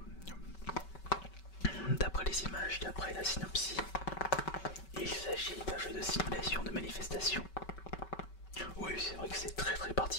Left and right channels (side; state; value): right; late; 5.3 ms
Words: D'après les images, d'après la synopsis, il s'agit d'un jeu de simulation de manifestation. Oui, c'est vrai que c'est très